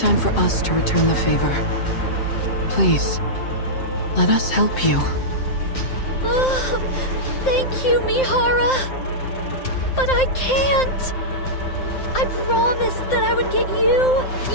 for us to return the favor. Please, let us help you. Oh, thank you, Mihara. But I can't. I promised that I would get you,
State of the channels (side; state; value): right; late; 7.7 ms